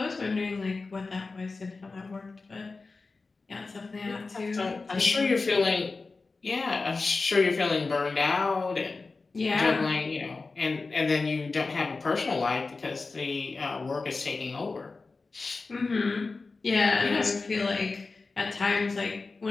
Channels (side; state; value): right; quieter; 3.9 dB